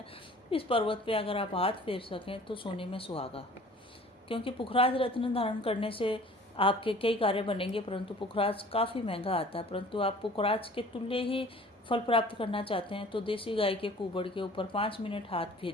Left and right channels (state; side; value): normal; both; correlation 0.49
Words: इस पर्वत पे अगर आप हाथ फेर सकें तो सोने में सुहागा, क्योंकि पुखराज रत्न धारण करने से आपके कई कार्य बनेंगे, परंतु पुखराज काफ़ी महंगा आता है। परंतु आप पुखराज के तुल्य ही फल प्राप्त करना चाहते हैं तो देसी गाय के कुबड़ के ऊपर 5 मिनट हाथ